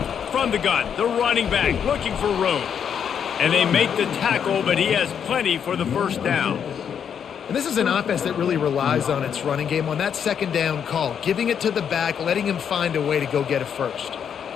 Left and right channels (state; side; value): quieter; right; 7.9 dB